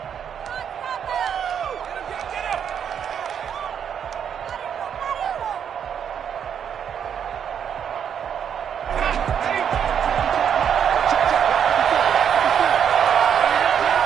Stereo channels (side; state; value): left; quieter; 8.2 dB